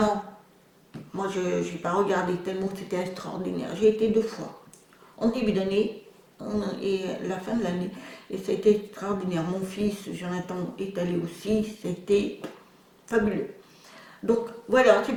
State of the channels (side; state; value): both; identical; correlation 1.00